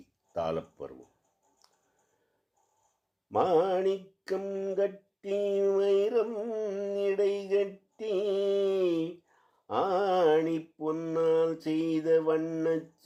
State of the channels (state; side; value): identical; both; correlation 1.00